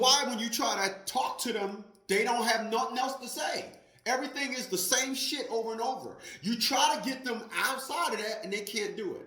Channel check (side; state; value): both; identical; correlation 1.00